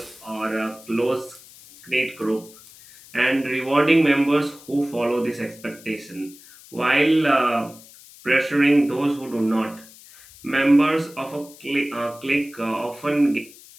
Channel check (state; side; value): noise; left; hiss, 21 dB below the sound